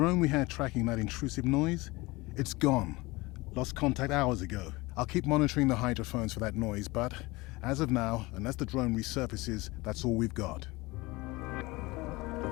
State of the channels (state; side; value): quieter; right; 22.3 dB